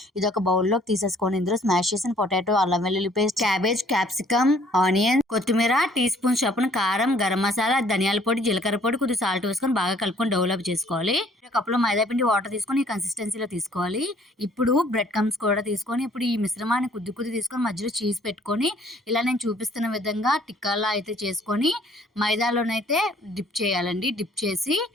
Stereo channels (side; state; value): both; normal; correlation 0.59